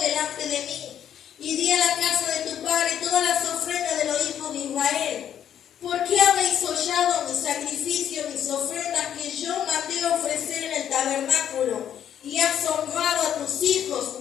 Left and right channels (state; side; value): quieter; right; 9.9 dB